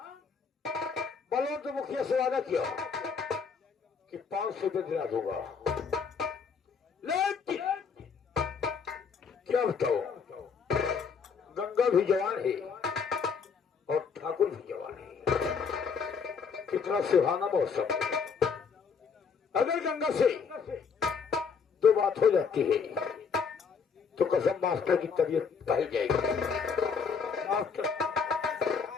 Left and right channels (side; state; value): right; quieter; 5.8 dB